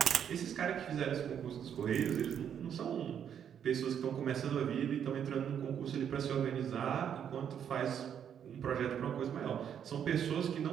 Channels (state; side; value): quieter; left; 8.7 dB